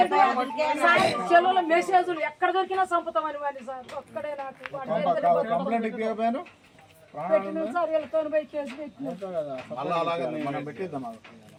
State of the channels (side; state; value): both; identical; correlation 1.00